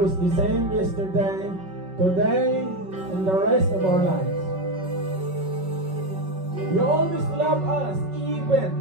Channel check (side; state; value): left; late; 5.3 ms